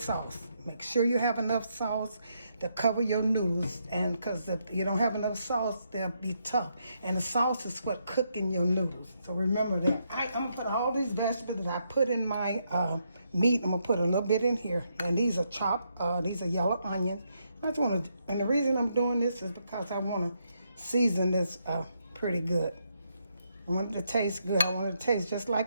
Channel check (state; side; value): inverted; both; correlation -0.78